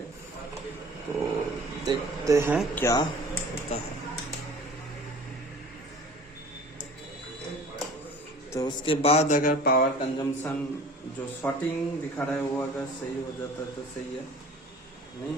तो देखते हैं क्या होता है। तो उसके बाद अगर पावर कंजम्पशन जो शॉर्टिंग दिखा रहा है वो अगर सही हो जाता है तो सही है, नहीं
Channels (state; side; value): normal; both; correlation 0.45